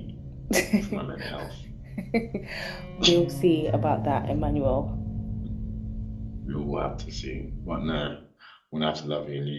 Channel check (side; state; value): both; identical; correlation 1.00